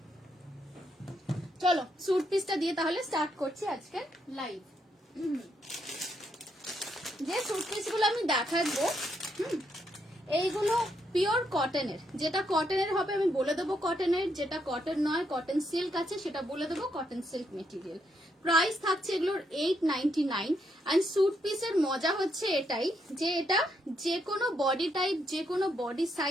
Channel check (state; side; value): normal; both; correlation 0.77